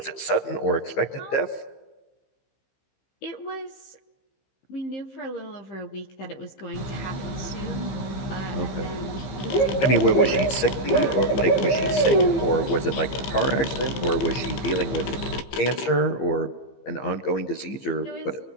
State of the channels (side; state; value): right; late; 15 ms